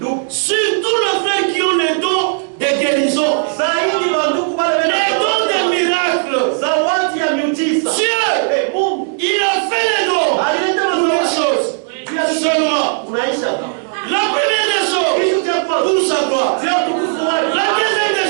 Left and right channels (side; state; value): left; silent; digital silence